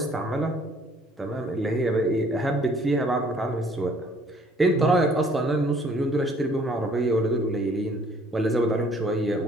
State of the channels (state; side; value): normal; both; correlation 0.59